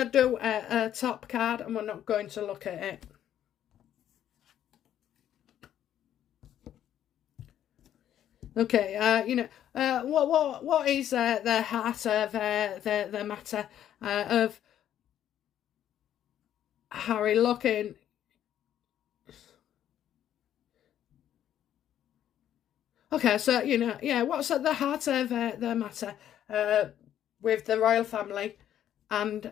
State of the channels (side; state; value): right; quieter; 10.8 dB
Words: do a top card, and we're not going to look at it. Okay, what is the heart of the matter of Harry looking? Okay, so what's at the heart of the matter with the royal family and